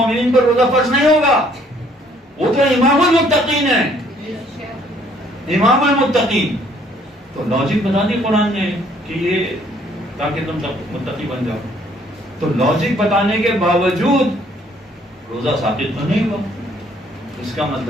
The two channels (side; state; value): both; normal; correlation 0.63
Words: پر روزہ فرض نہیں ہوگا؟ وہ تو امام المتقین ہے، امام المتقین. تو لاجک بتا دی قرآن نے کہ یہ تاکہ تم متقی بن جاؤ. تو لاجک بتانے کے باوجود روزہ ثابت تو نہیں ہوا. اس کا